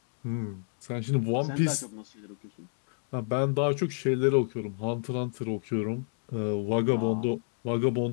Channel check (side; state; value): right; silent; digital silence